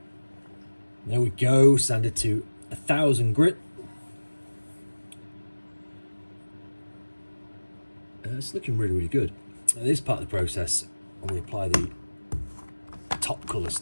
There we go, sanded to 1000 grit. It's looking really, really good. Now, this part of the process, when we apply the top colour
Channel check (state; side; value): inverted; both; correlation -1.00